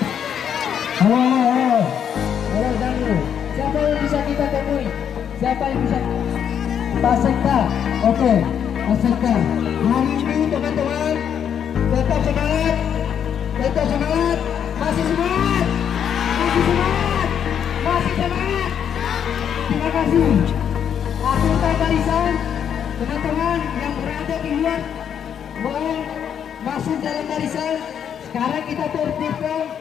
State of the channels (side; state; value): right; quieter; 8.5 dB